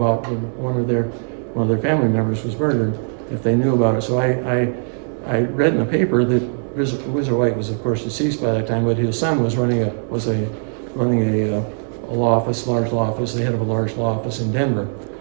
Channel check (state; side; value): silent; left; 60 dB below the other